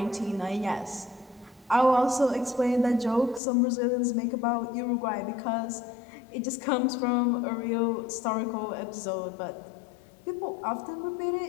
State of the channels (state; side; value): drops out; right; at 3.4 s